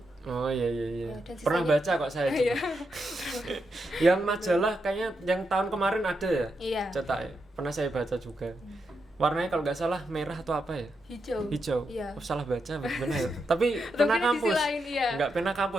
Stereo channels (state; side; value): normal; both; correlation 0.84